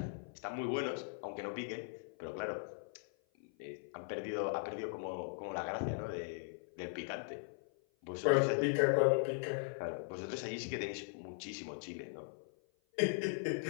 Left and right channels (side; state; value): right; silent; 52 dB below the other